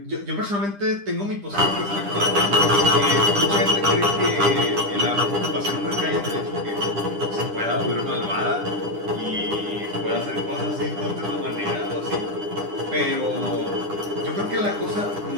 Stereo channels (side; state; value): left; late; 10 ms